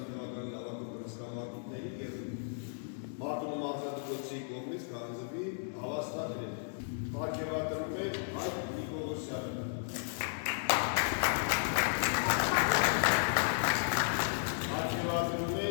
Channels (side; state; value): right; silent; digital silence